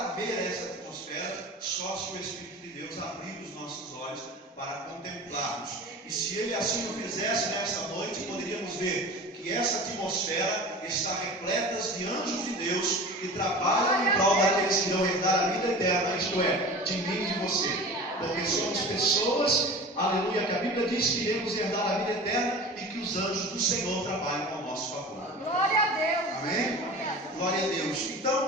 ver essa atmosfera, só se o Espírito de Deus abrir os nossos olhos para contemplarmos. E se Ele assim o fizesse nesta noite, poderíamos ver que essa atmosfera está repleta de anjos de Deus que trabalham em prol daqueles que vão herdar a vida eterna, isto é, de mim e de você. Porque somos pessoas, aleluia, que a Bíblia diz que iremos herdar a vida eterna e que os anjos do Senhor trabalham ao nosso favor. Glória a Deus! Amém? Glória a Deus.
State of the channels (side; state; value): both; normal; correlation 0.36